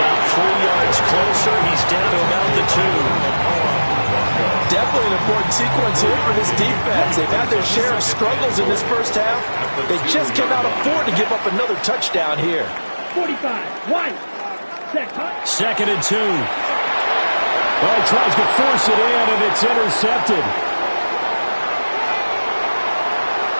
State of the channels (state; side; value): inverted; both; correlation -1.00